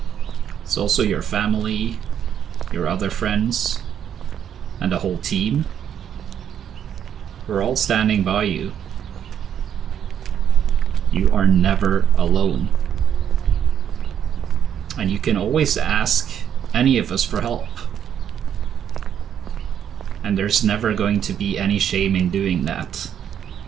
It's also your family, your other friends, and the whole team. We're all standing by you. You are never alone. And you can always ask any of us for help. And there's never going to be any shame in doing that.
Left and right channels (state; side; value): quieter; left; 9.2 dB